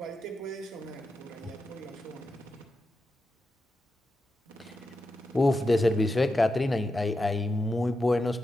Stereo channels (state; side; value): normal; both; correlation 0.88